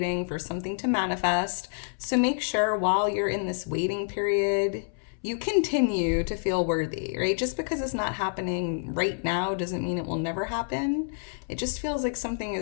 for something to manifest. So make sure while you're in this waiting period, you continue to feel worthy, right? Just because it's not happening right now doesn't mean it will never happen. It just feels like something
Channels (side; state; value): right; silent; 59 dB below the other